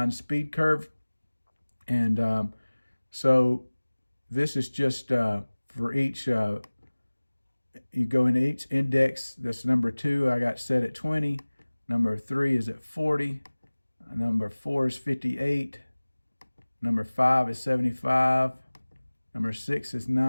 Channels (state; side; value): inverted; both; correlation -1.00